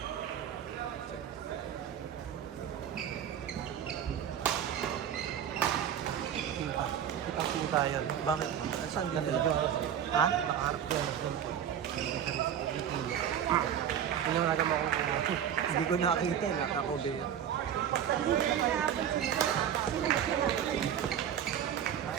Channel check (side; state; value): left; quieter; 9.3 dB